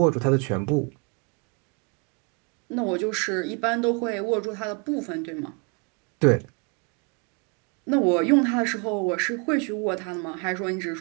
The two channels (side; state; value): left; quieter; 34.5 dB